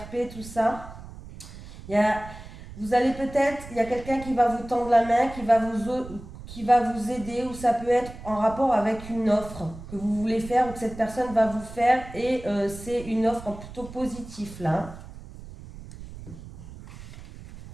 tout ça. Vous allez peut-être, il y a quelqu'un qui va vous tendre la main, qui va vous aider, ou ça peut être en rapport avec une offre que vous voulez faire ou que cette personne va vous faire et c'est une offre plutôt positive là.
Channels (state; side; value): noise; right; rumble, 15 dB below the sound